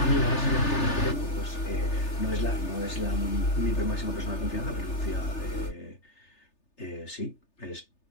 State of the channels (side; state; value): right; late; 3.3 ms